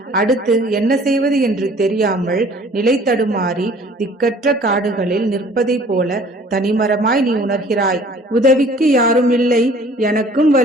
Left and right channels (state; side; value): normal; both; correlation 0.52